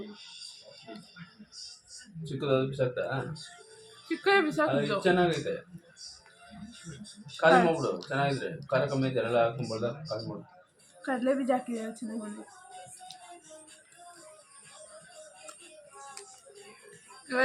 ಅದು ಬಿಸಾಕ್ತಾ? ಚಿಕ್ಕದೇ ಬಿಸಾಕಿದ್ದು ಚೆನ್ನಾಗೈತೆ. ಖಾಲಿ ಮಾಡ್ಬಿಡು. ಚೆನ್ನಾಗಿದ್ರೆ ಖಾರ ಕಮ್ಮಿ ಐತೆ ಎಲ್ಲ ಹಾಕೊಂಡ್ಬಾರ್ದ. ಖಾಲಿ ಮಾಡು. ಕಡಲೆ ಬೀಜ ಹಾಕಿದ್ರೆ ಚೆನ್ನಾಗಿ ಬಂದಿದೆ.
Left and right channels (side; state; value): both; identical; correlation 1.00